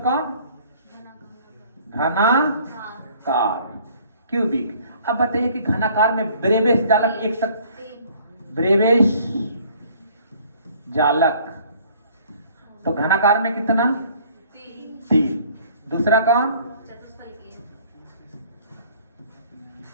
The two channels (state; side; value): inverted; both; correlation -0.56